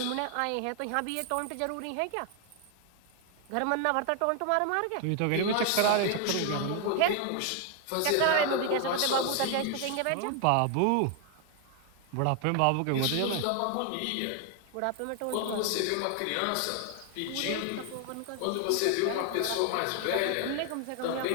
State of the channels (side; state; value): both; different; correlation 0.00